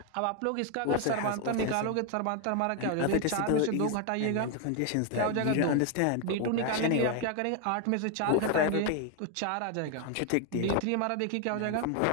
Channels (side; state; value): both; different; correlation 0.01